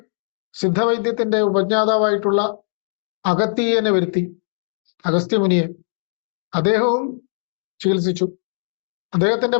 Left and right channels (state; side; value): silent; right; digital silence